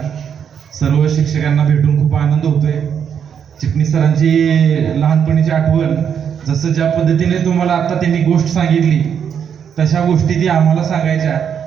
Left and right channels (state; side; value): quieter; left; 7.8 dB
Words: सर्व शिक्षकांना भेटून खूप आनंद होतोय. चिटणीस सरांची लहानपणीची आठवण, जसं ज्या पद्धतीने तुम्हाला आता त्यांनी गोष्ट सांगितली तशा गोष्टी ती आम्हाला सांगायच्या.